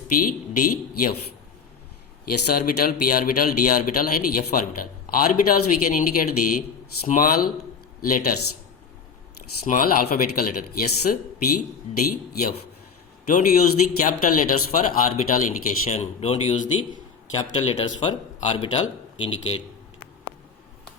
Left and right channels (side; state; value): right; quieter; 5.8 dB